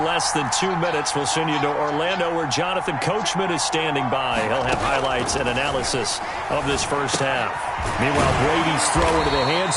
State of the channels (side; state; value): both; identical; correlation 1.00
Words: less than 2 minutes, we'll send you to Orlando where Jonathan Coachman is standing by. He'll have highlights and analysis of this first half. Meanwhile, Brady's throw into the hands